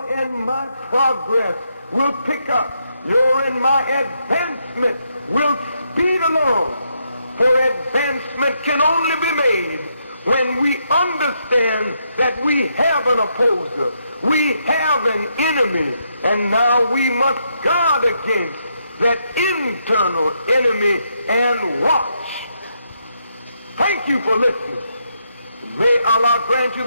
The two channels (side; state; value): both; inverted; correlation -0.78